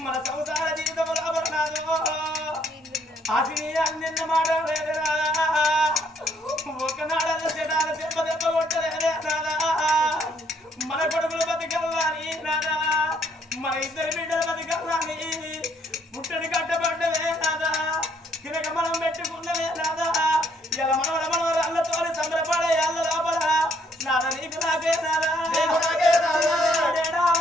మన సంసార జీవితం రాబడినాదు ఆశని అన్న మాట లేదురా ఒకనాడల్లో చెడాల దెబ్బ దెబ్బ కొట్టలేదే నాదా మన కొడుకులు బతికల్లాని నాదా మన ఇద్దరు బిడ్డలు బతికల్లాని పుట్టడి కట్టబడ్డవే నాదా తినక మనం పెట్టుకున్నవే నాదా ఇలా మనవరల్లతో సంబరపడే అల్ల లోపల నాదా నీకు నాకే నాదా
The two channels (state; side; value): normal; both; correlation 0.68